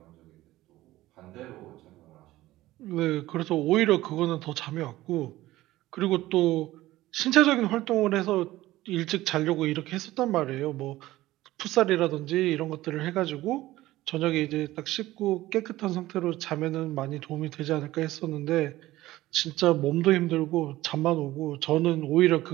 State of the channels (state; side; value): quieter; left; 16.6 dB